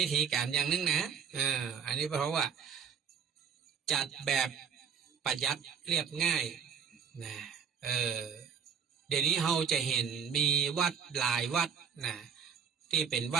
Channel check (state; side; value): quieter; left; 7.1 dB